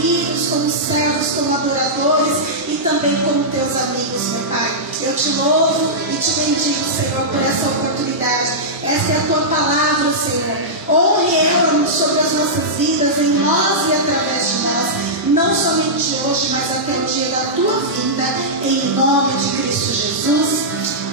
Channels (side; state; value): both; normal; correlation -0.12